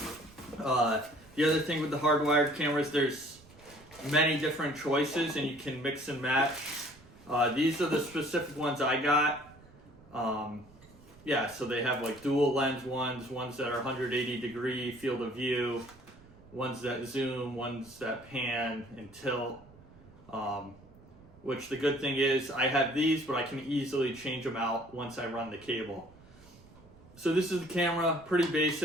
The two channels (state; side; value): noise; right; rumble, 24 dB below the sound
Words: The other thing with the hardwired cameras, there's many different choices and you can mix and match. These are the specific ones I got. Yeah, so they have like dual lens ones that are 180 degree field of view, ones that zoom, ones that pan and tilt. Which the good thing is I have these, but I can easily change them out once I run the cable. So this is the camera, pretty